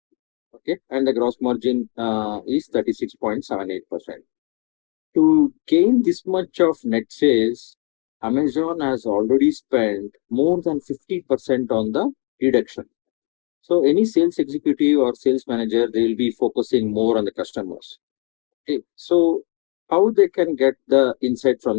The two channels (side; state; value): right; quieter; 35.9 dB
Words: Okay, and the gross margin is 36.78%. To gain this much of net sales, Amazon has already spent more than 50% on the reduction. So any sales executive or sales manager, they will be focusing more on the customers. Okay, so how they can get the insight